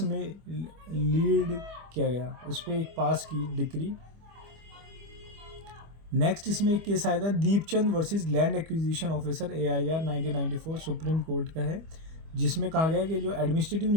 में लीड किया गया, उस पर एक पास की डिक्री। नेक्स्ट इसमें एक केस आया था Deepchand versus land acquisition officer, AIR 1994, supreme court का है, जिसमें कहा गया कि जो एडमिनिस्ट्रेटिव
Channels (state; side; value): late; left; 25 ms